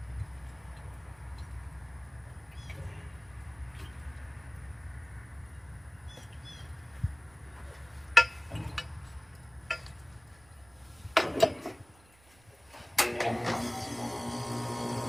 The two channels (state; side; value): noise; right; rumble, 28 dB below the sound